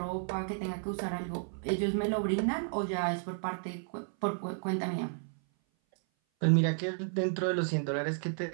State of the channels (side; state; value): left; silent; 56 dB below the other